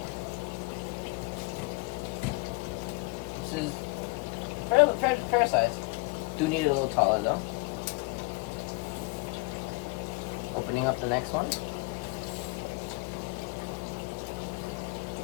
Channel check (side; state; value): right; quieter; 26.2 dB